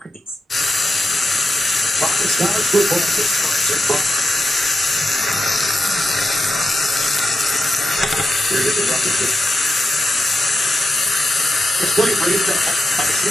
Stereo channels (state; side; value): normal; both; correlation 0.89